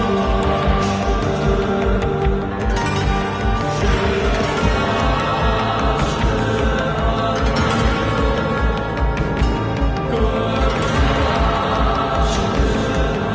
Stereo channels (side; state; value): both; identical; correlation 1.00